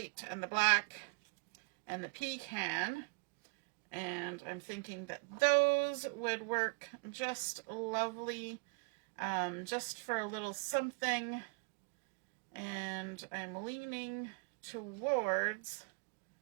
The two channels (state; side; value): quieter; left; 33.4 dB